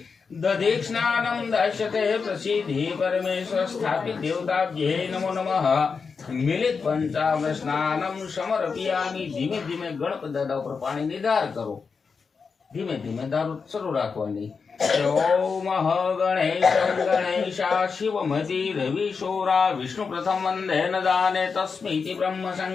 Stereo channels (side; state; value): right; quieter; 5.3 dB